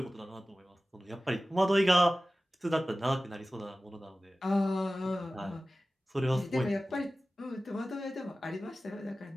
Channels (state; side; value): normal; both; correlation 0.96